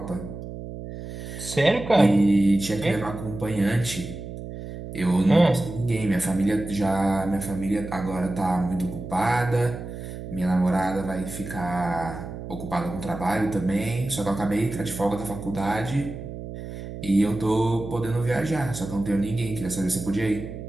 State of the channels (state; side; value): noise; right; hum, 10 dB below the sound